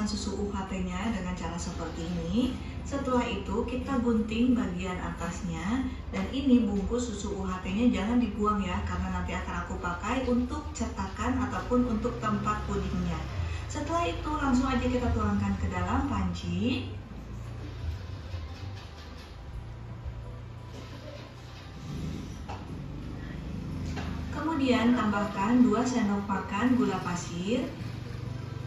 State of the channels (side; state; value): both; identical; correlation 1.00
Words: susu UHT-nya dengan cara seperti ini. Setelah itu, kita gunting bagian atasnya. Dan ini bungkus susu UHT-nya jangan dibuang ya, karena nanti akan aku pakai untuk cetakan ataupun untuk tempat pudingnya. Setelah itu, langsung aja kita tuangkan ke dalam panci. Kemudian tambahkan 2 sendok makan gula pasir.